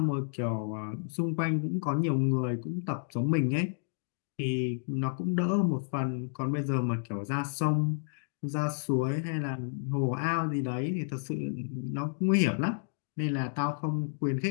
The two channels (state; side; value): silent; right; digital silence